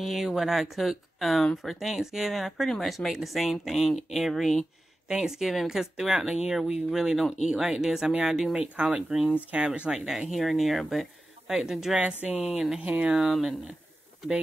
what I cook for Thanksgiving. I pretty much make the same thing every Thanksgiving because throughout the year we really don't eat like this. I mean, I do make collard greens, cabbage like that here and there, but like the dressing and the ham and the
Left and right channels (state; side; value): normal; both; correlation 0.94